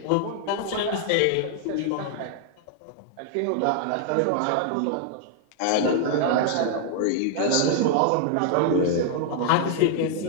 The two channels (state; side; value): different; both; correlation 0.00